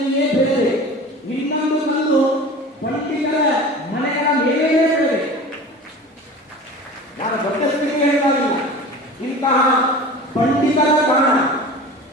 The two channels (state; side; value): normal; both; correlation 0.37